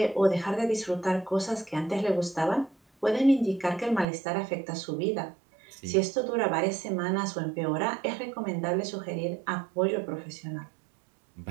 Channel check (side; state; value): left; drops out; at 4.0 s